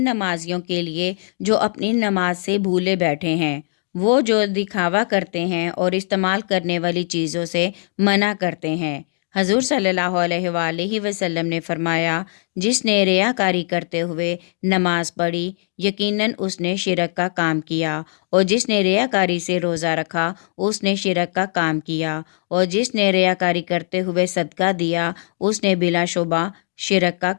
کے لیے جو اپنی نماز سے بھولے بیٹھے ہیں، وہ جو دکھاوا کرتے ہیں اور استعمال کرنے والی چیزوں سے منع کرتے ہیں۔ حضور صلی اللہ علیہ وآلہ وسلم نے فرمایا، جس نے ریاکاری کرتے ہوئے نماز پڑھی، یقیناً اس نے شرک کا کام کیا، اور جس نے ریاکاری سے روزہ رکھا اس نے شرک کا کام کیا، اور جس نے ریاکاری کرتے ہوئے صدقہ دیا اس نے بلا شبہ شرک کا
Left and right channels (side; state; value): right; silent; digital silence